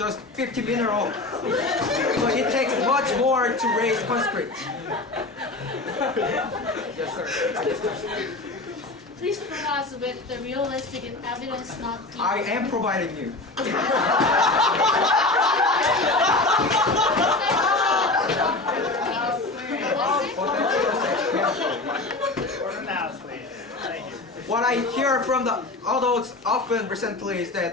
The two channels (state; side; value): quieter; right; 3.1 dB